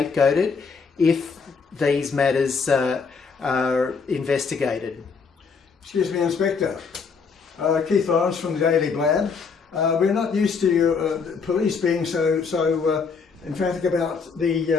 if these matters are investigated. Excuse me, Inspector. Keith Lawrence from the Daily Blad. We're not used to police being so emphatic about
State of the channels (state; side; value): quieter; right; 5.3 dB